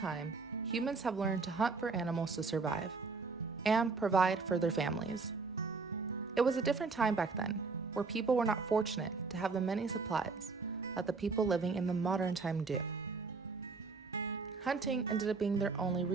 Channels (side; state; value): left; quieter; 4.4 dB